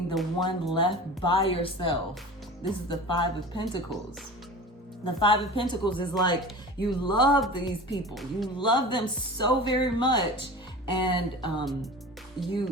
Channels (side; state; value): both; normal; correlation 0.35